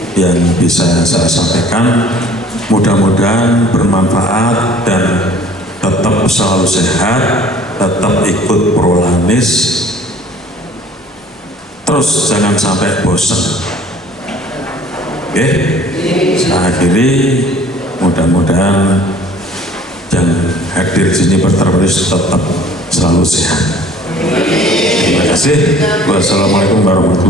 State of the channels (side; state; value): both; normal; correlation 0.51